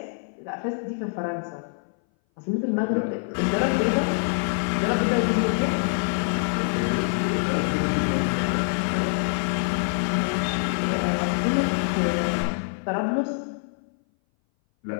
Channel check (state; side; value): silent; right; 59 dB below the other